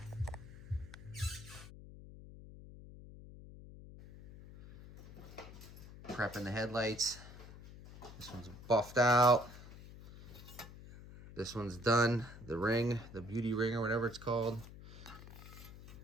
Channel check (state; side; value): noise; left; hum, 16 dB below the sound